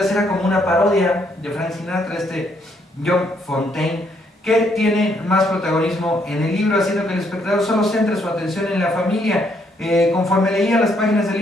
era como una parodia de Frank Sinatra, John Fontane, que tiene más protagonismo en el libro, haciendo que el espectador solo centre su atención en la familia. Conforme leía las páginas del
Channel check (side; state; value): both; normal; correlation 0.71